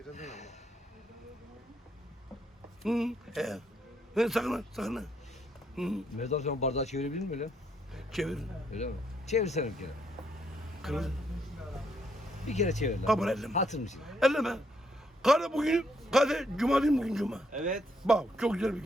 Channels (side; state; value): both; normal; correlation 0.74